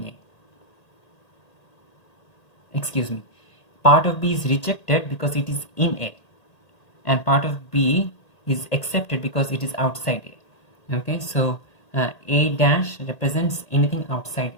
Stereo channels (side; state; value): right; late; 1.8 ms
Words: A. Excuse me. Part of B is rejected because it is in A, and part of B is accepted because it is outside A. Okay, so A dash represents anything outside